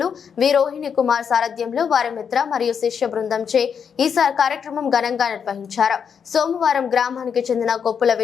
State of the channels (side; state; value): right; quieter; 7.1 dB